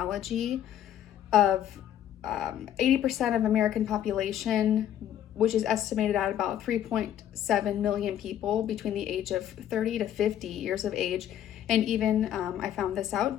of 80% of American population, which is estimated at about 3.7 million people between the age of 30 to 50 years of age. And even, I found this out,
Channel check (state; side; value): quieter; right; 10.7 dB